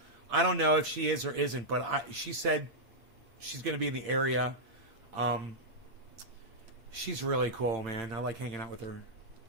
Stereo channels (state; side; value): late; left; 8.6 ms